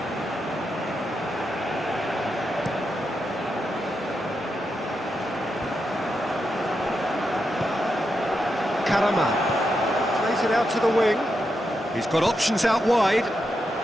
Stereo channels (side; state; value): both; normal; correlation 0.85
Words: Karama. Plays it out to the wing. He's got options out wide.